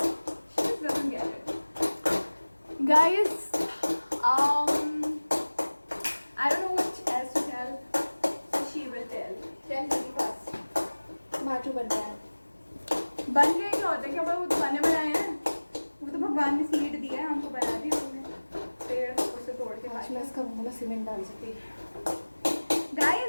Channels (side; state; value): both; inverted; correlation -1.00